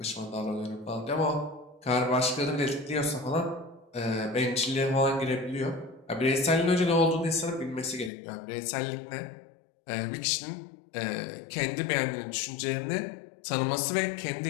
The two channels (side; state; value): right; drops out; at 8.1 s